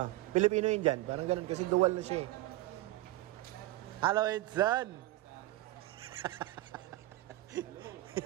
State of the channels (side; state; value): left; quieter; 17.6 dB